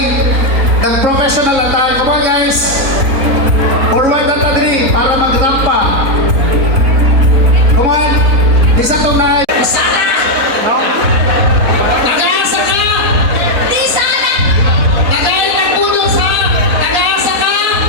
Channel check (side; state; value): left; late; 4.1 ms